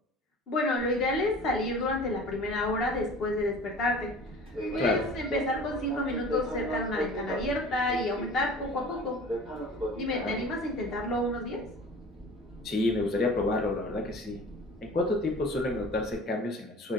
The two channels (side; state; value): both; normal; correlation 0.42